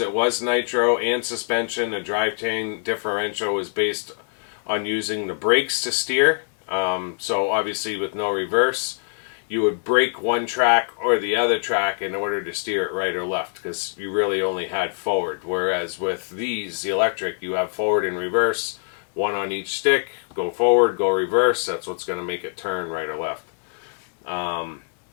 was nitro and suspension. The drivetrain differential was based on using the brakes to steer. So obviously with no reverse, you would brake one track or the other track in order to steer it right or left, because you really only had forward. Whereas with these, the electric, you have forward and reverse, one on each stick, go forward, go reverse. That's what's going to make it turn right or left.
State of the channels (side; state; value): right; silent; digital silence